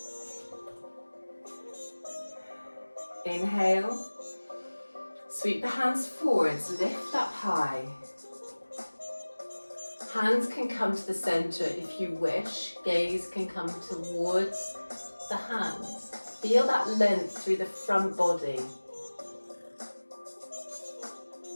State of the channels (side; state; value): both; inverted; correlation -1.00